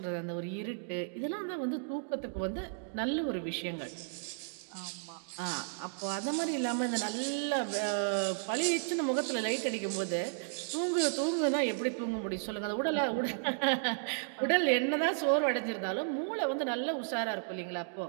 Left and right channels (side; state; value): left; silent; digital silence